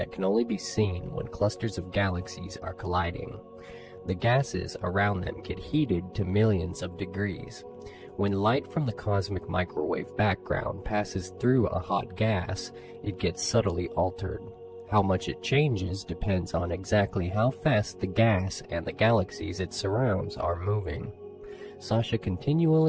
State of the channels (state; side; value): identical; both; correlation 1.00